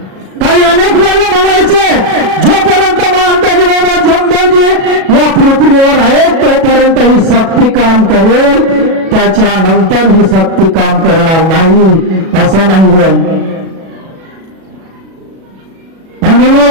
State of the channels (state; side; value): late; left; 37 ms